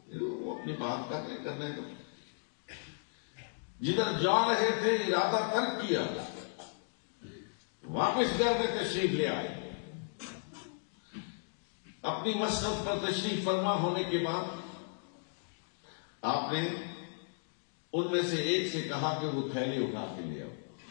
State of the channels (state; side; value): silent; right; digital silence